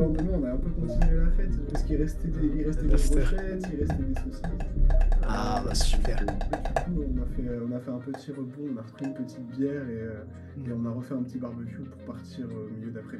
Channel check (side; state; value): both; identical; correlation 1.00